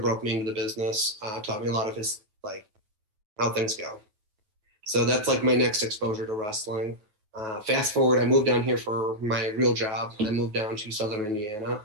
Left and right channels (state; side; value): late; left; 9.3 ms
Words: broke me into the business, taught me a lot of his, how things go. So that's my next exposure to wrestling. Fast forward, I moved down here for my real job. I moved down to Southern Indiana,